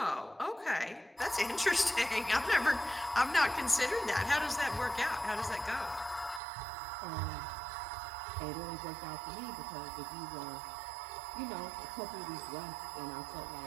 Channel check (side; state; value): left; drops out; at 6.4 s